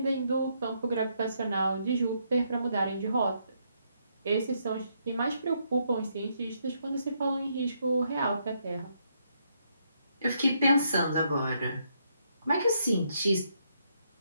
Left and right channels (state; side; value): inverted; both; correlation -0.75